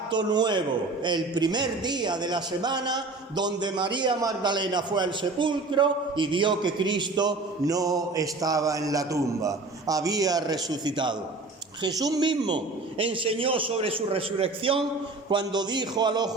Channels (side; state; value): left; quieter; 3.5 dB